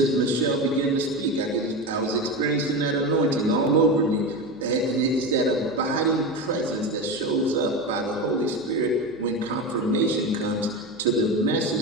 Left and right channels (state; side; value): noise; left; hum, 29 dB below the sound